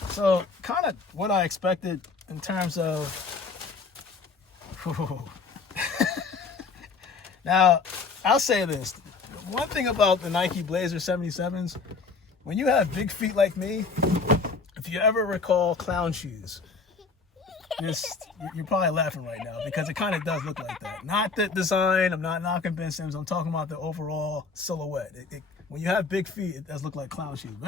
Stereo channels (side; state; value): right; quieter; 4.5 dB